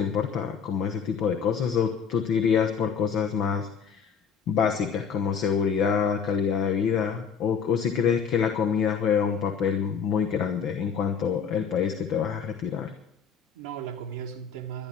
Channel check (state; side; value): quieter; right; 6.6 dB